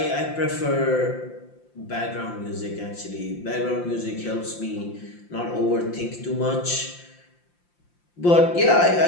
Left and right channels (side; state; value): right; late; 5.8 ms